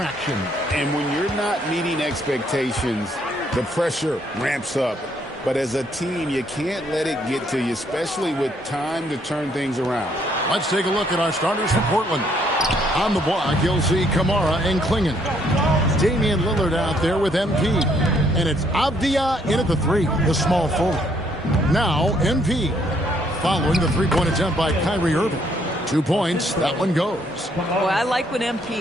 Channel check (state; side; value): normal; both; correlation 0.68